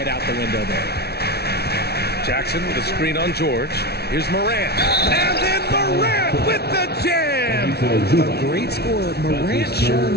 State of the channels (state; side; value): late; right; 0.47 ms